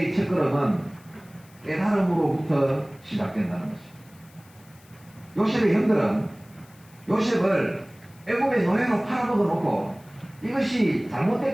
첫걸음은 깨달음으로부터 시작된다는 것입니다. 요셉의 형들은 요셉을 애굽의 노예로 팔아먹어 놓고 이것이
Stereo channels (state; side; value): noise; left; hiss, 27 dB below the sound